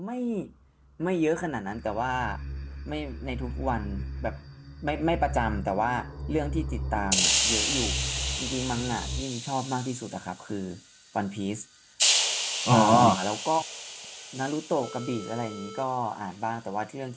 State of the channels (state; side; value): identical; both; correlation 1.00